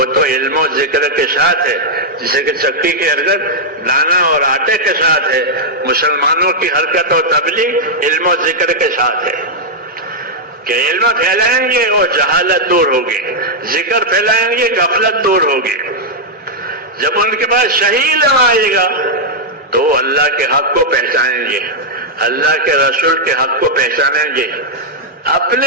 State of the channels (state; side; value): normal; both; correlation -0.04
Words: تو علم و ذکر کے ساتھ ہے. جسے کہ چکی کی حرکت دانا اور آٹے کے ساتھ ہے، مسلمانوں کی حرکت اور تبلیغ علم و ذکر کے ساتھ ہے. کہ علم پھیلائیں گے اور جہالت دور ہوگی، ذکر پھیلائیں گے غفلت دور ہوگی. جب ان کے پاس صحیح علم آئے گا تو وہ اللہ کے حق کو پہچانیں گے، اللہ کے رسول کے حق کو پہچانیں گے،